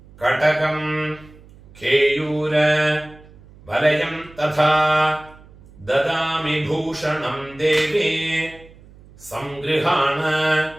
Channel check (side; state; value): right; noise; hum, 23 dB below the sound